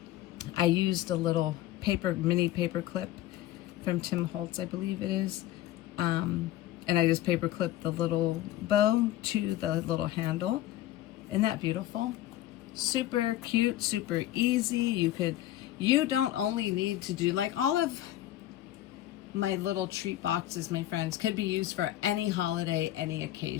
mini paper clip from Tim Holtz, I believe it is. And I just paper clipped the little bow to the little handle. Isn't that beautiful? Super cute, super easy. You don't only need to do, like, all of my little treat boxes, my friends, could be used for any holiday, any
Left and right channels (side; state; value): right; quieter; 13.9 dB